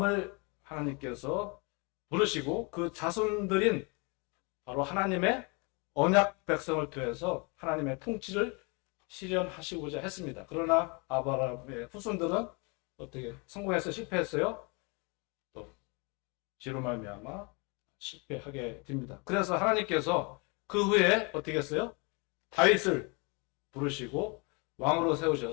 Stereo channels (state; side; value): quieter; right; 31.4 dB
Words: 하나님께서 부르시고 그 자손들인 바로 하나님의 언약 백성을 통해서 하나님의 통치를 실현하시고자 했습니다. 그러나 아브라함의 후손들은 어떻게 성공해서 실패했어요? 또 죄로 말미암아 실패하게 됩니다. 그래서 하나님께서 그 후에 어떻게 했어요? 다윗을 부르시고 왕으로